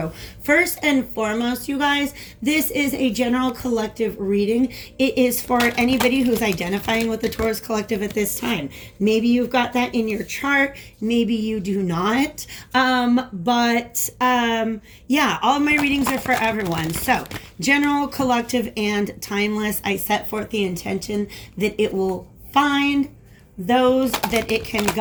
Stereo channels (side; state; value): both; identical; correlation 1.00